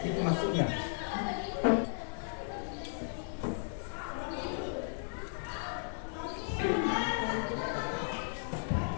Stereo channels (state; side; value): silent; right; digital silence